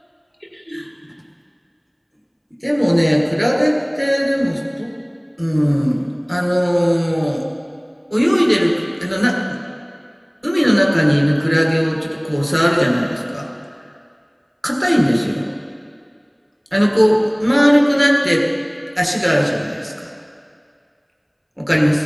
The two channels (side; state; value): both; identical; correlation 1.00